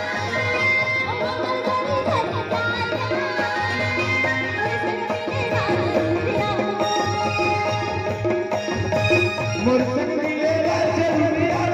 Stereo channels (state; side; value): identical; both; correlation 1.00